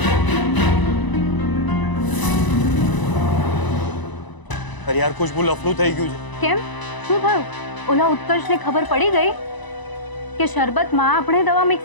અરે યાર, ખુશ્બુ લફડું થઈ ગયું છે. કેમ, શું થયું? ઓલા ઉત્કર્ષને ખબર પડી ગઈ કે શરબતમાં આપણે દવા મિક્સ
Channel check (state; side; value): late; right; 1.0 ms